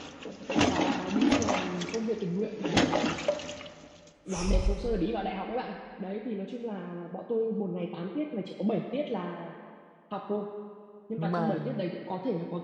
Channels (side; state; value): both; identical; correlation 1.00